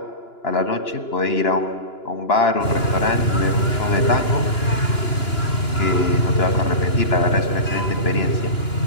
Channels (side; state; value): right; late; 2.9 ms